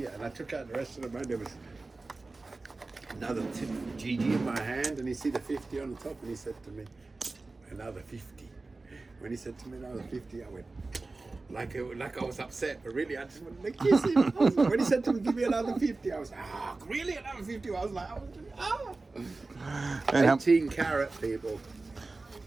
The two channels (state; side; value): quieter; left; 3.5 dB